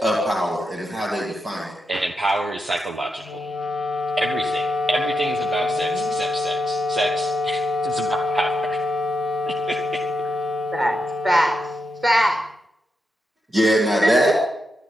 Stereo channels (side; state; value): both; normal; correlation 0.85